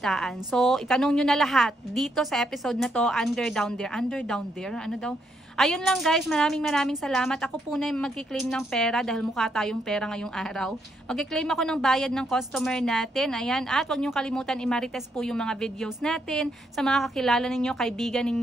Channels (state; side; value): normal; both; correlation 0.77